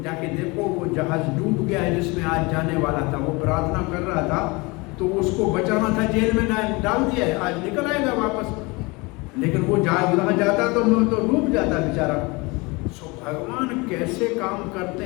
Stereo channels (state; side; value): quieter; right; 25.8 dB